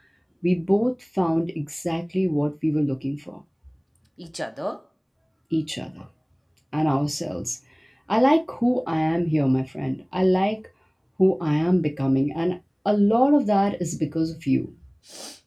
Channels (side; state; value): both; identical; correlation 1.00